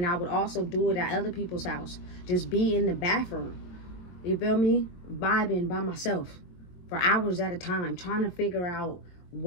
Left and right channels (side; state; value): right; late; 22 ms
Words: I would also do it at other people's house. Just be in the bathroom. You feel me? Vibing by myself for hours at a time. Trying to figure out